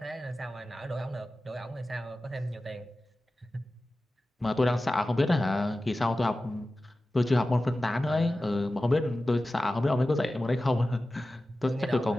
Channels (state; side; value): normal; both; correlation 0.95